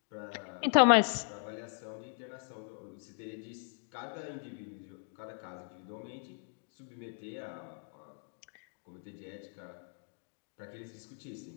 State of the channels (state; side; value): silent; right; 53 dB below the other